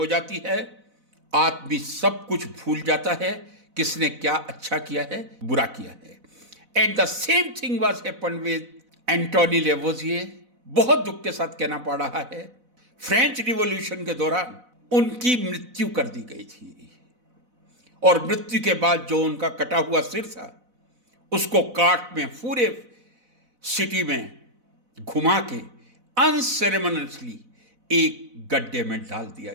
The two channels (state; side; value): late; left; 4.0 ms